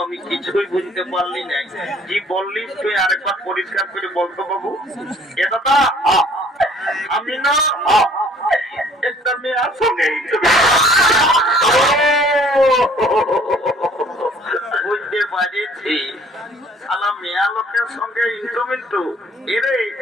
আমি কিছুই বুঝতে পারলি না। কি বললি তুই আরেকবার পরিষ্কার করে বলতো বাবু। এ দাদা আমি না একটা মেয়ের সঙ্গে বুঝতে পারছি, শালা মেয়া লোকের সঙ্গে ইন্টু মিন্টু। এরে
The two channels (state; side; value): normal; both; correlation 0.56